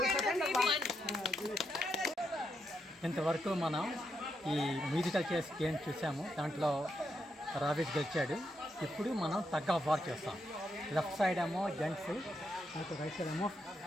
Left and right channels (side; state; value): both; normal; correlation 0.81